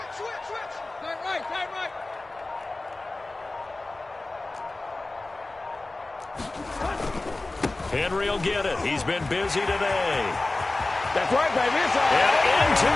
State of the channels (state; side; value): quieter; right; 3.0 dB